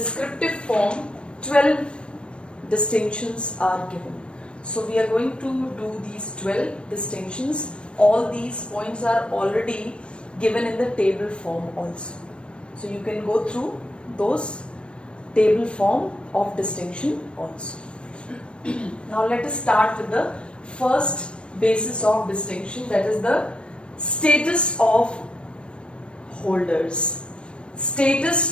form, 12 distinctions are given. So we are going to do these 12 distinctions. All these points are already given in the table form also. So you can go through those table form of distinction also. Now let us start with the first basis of distinction, that is the status of holders.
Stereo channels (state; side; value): late; right; 0.058 ms